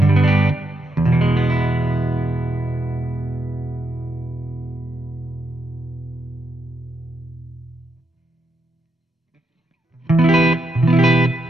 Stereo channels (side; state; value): both; normal; correlation 0.82